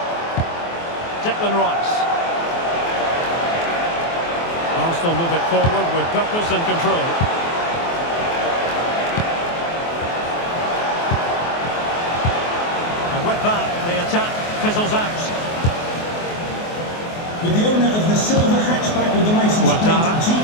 Declan Rice. Arsenal move it forward with purpose and control. And with that, the attack fizzles out. With the owner of the silver hatchback with the license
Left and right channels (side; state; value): right; late; 24 ms